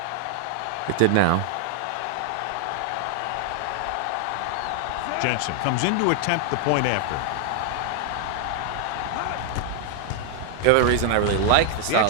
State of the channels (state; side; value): different; both; correlation 0.00